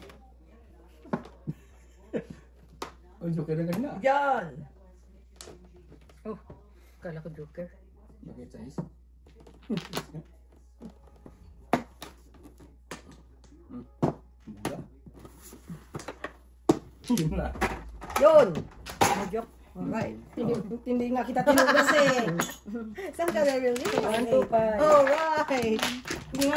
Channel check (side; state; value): both; identical; correlation 1.00